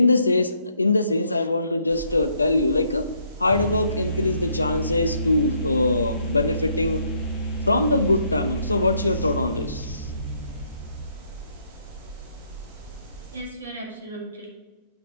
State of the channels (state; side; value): inverted; both; correlation -0.70